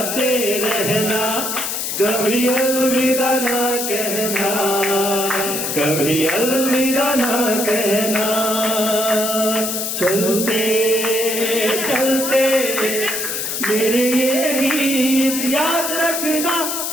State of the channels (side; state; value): left; noise; hiss, 2 dB below the sound